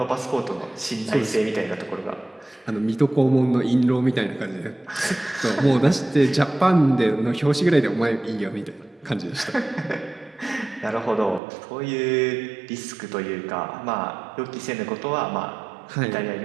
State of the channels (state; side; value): drops out; left; at 11.4 s